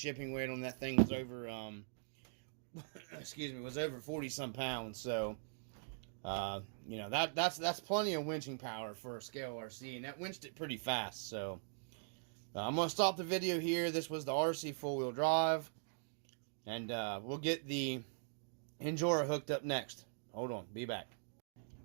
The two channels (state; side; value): silent; left; digital silence